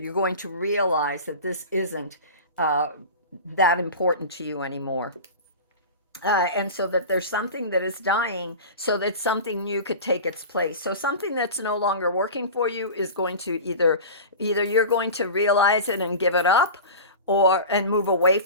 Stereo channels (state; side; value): inverted; both; correlation -0.32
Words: going to realize that this isn't uh, that important to you anymore. And so that there's something that is dying so that something new could take its place. So something that's no longer working for you is going to either you're going to realize it and give it up, or and move away